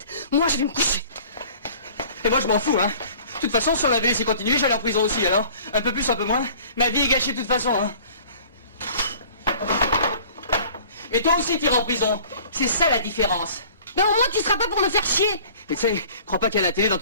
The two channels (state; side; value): inverted; both; correlation -0.48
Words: Moi, je vais me coucher. Et moi, je m'en fous, hein. De toute façon, si on avait laissé continuer, j'allais en prison aussi, alors. Un peu plus, un peu moins. Ma vie est gâchée de toute façon, hein. Mais toi aussi, t'iras en prison. C'est ça la différence. Ben au moins, tu seras pas pour me faire chier. Mais tu sais, crois pas qu'il y a la télé dans